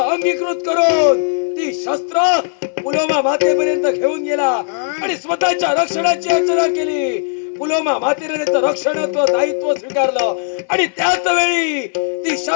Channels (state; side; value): silent; right; 68 dB below the other